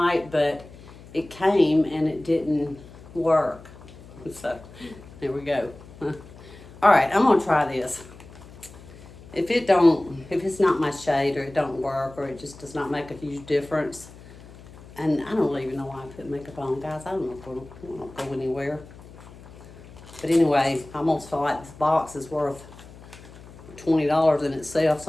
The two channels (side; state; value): left; noise; hum, 19 dB below the sound